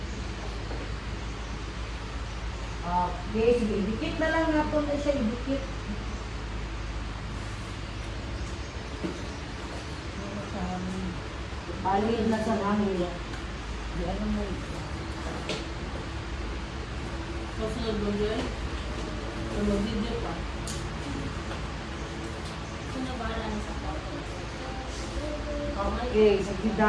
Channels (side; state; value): both; identical; correlation 1.00